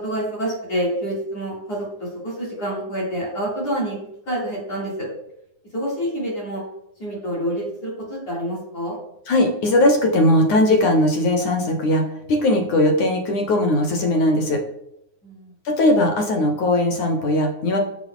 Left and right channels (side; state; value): right; late; 9.7 ms